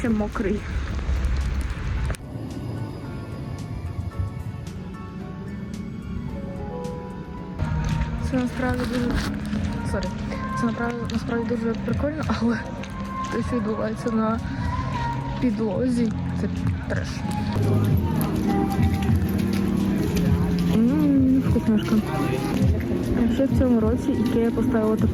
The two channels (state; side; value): identical; both; correlation 1.00